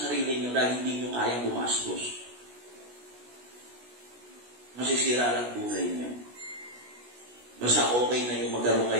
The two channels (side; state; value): left; late; 16 ms